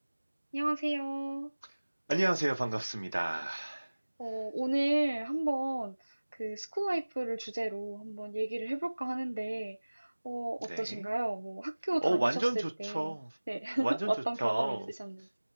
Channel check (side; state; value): both; inverted; correlation -1.00